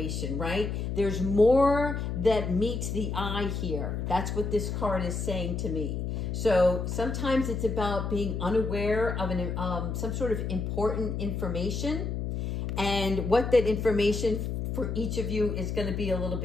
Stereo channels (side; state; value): left; noise; hum, 2 dB below the sound